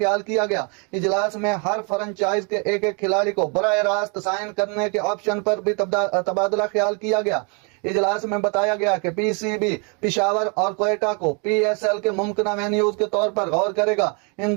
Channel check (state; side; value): quieter; left; 35.3 dB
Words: किया गया। इजलास में हर फ्रेंचाइज के एक एक खिलाड़ी को बराह रास्त साइन करने के ऑप्शन पर भी तबादला ख्याल किया गया। इजलास में बताया गया कि PCB पिशावर और कोयटा को PSL के मुमकिन वेन्यूज के तौर पर गौर करेगा। इन